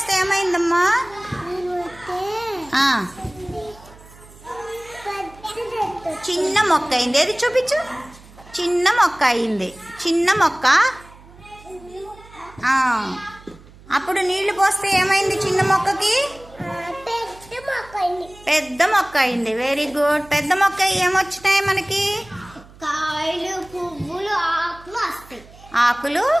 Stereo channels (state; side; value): noise; right; hum, 22 dB below the sound